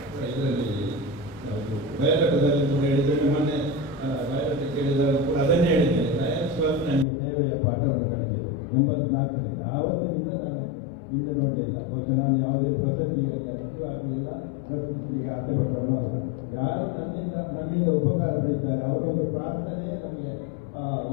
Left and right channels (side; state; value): right; drops out; at 7.1 s